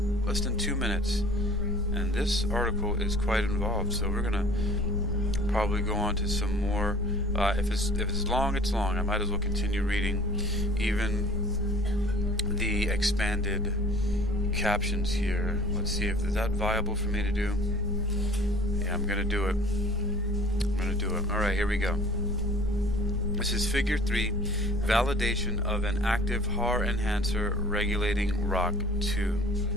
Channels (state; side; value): normal; both; correlation 0.49